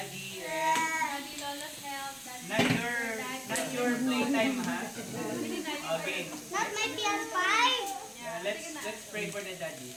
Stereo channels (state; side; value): identical; both; correlation 1.00